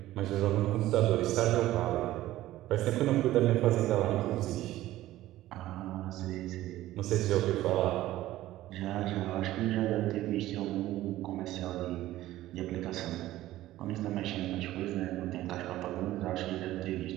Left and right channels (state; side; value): quieter; left; 15.3 dB